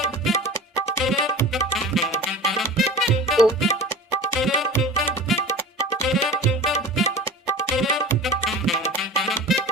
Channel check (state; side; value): normal; both; correlation 0.35